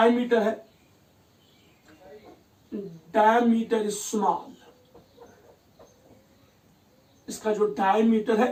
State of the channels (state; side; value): identical; both; correlation 1.00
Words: है, डायमीटर इज स्मॉल। इसका जो डायमीटर